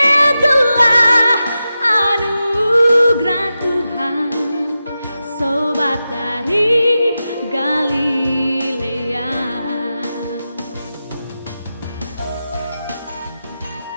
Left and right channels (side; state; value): both; inverted; correlation -0.91